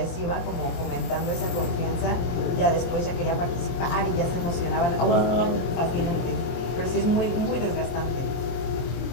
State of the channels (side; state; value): right; late; 23 ms